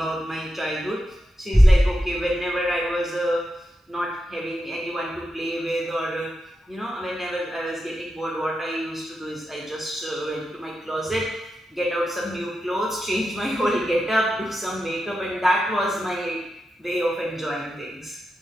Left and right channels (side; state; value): both; normal; correlation 0.88